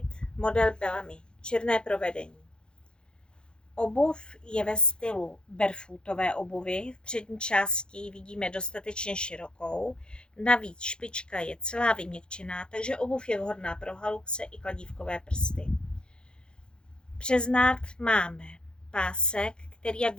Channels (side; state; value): right; late; 0.049 ms